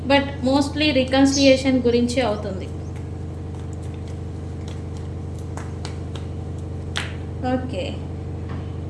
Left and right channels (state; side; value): identical; both; correlation 1.00